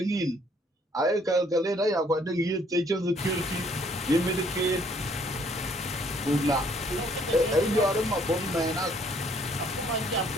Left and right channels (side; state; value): both; normal; correlation 0.64